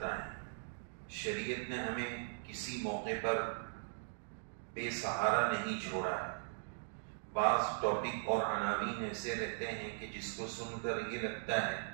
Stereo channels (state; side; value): silent; left; digital silence